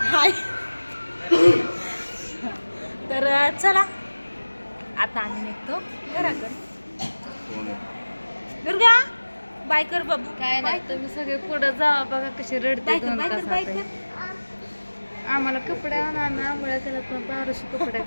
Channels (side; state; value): both; inverted; correlation -1.00